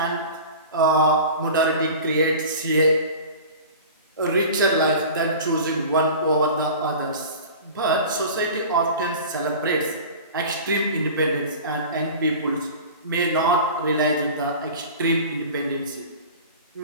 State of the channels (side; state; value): both; inverted; correlation -0.37